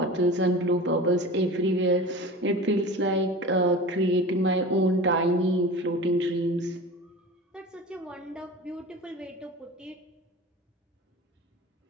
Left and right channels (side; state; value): both; normal; correlation 0.34